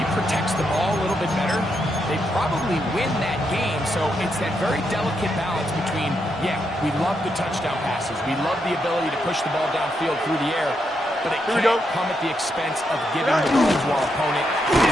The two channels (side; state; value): both; normal; correlation 0.81